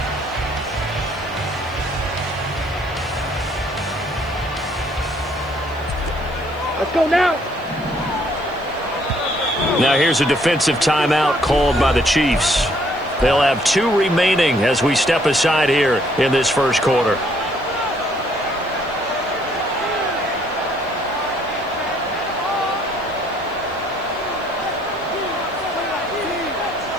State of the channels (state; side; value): noise; right; hiss, 28 dB below the sound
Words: Let's go now. Now here's a defensive timeout called by the Chiefs. They'll have 2 remaining as we step aside here in this first quarter.